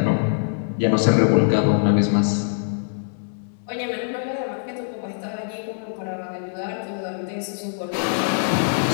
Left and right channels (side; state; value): right; silent; digital silence